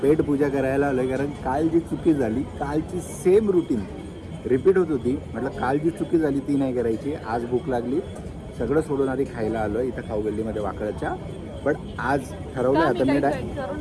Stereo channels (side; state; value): both; identical; correlation 1.00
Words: पेट पूजा करायला आलो आहे, कारण काल जी चुकी झाली, कालची सेम रुटीन रिपीट होत होती. म्हटलं काल जी चुकी झाली ती नाही करायची. आज भूक लागली, सगळं सोडून आधी खायला आलो आहे इथं खाऊगल्लीमध्ये वाकळच्या. पण आज ठरवलं आता मी